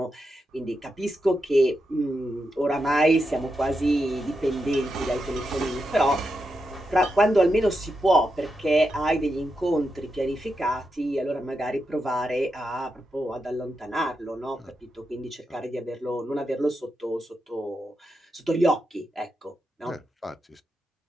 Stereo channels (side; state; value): both; normal; correlation 0.86